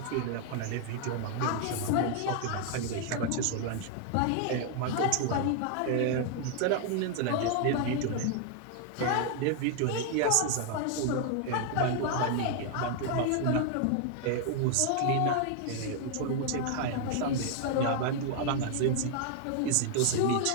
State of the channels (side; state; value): both; different; correlation 0.00